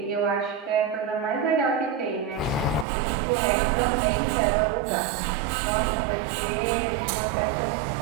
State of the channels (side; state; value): left; drops out; at 2.9 s